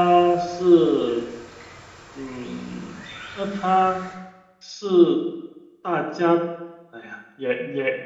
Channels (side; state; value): both; identical; correlation 1.00